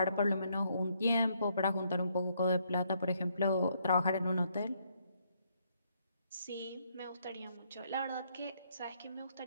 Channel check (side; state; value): both; inverted; correlation -0.72